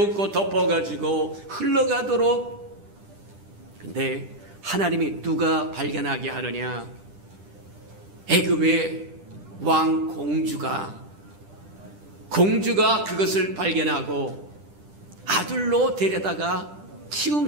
덮어가지고 흘러가도록. 근데 하나님이 누가 발견하게 하느냐? 애굽의 왕 공주가 공주가 그것을 발견하고 아들로 데려다가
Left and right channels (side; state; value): left; late; 10 ms